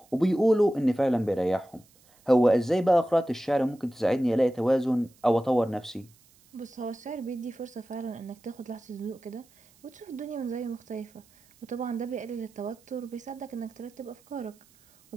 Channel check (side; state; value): right; noise; hiss, 30 dB below the sound